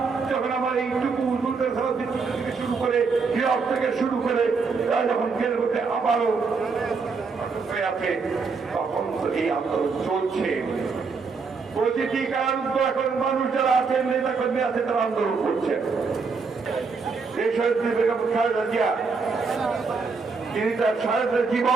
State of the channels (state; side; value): quieter; left; 4.8 dB